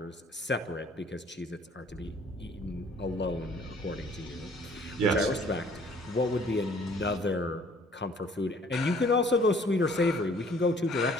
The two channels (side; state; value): both; normal; correlation 0.56